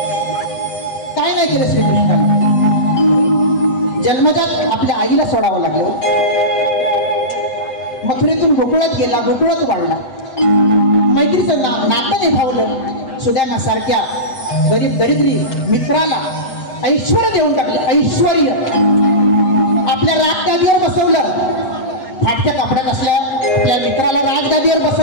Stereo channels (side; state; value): right; late; 8.1 ms